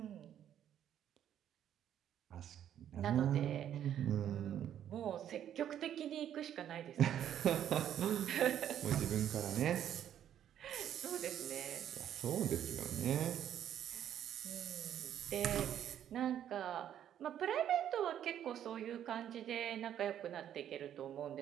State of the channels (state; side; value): quieter; left; 10.3 dB